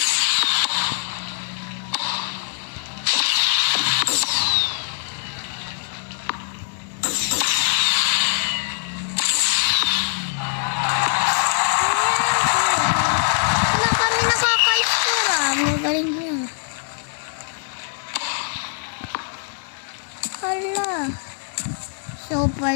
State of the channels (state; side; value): silent; right; digital silence